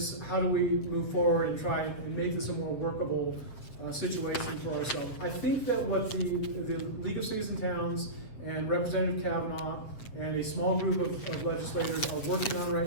how do we move forward and try and make this a more workable situation for ourselves? I think that what the League of Cities and Towns and Representative Kavanaugh and a small group of legislators are working on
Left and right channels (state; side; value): late; right; 7.7 ms